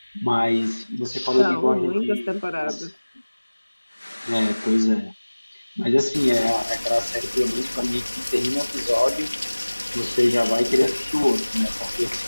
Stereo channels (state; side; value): inverted; both; correlation -1.00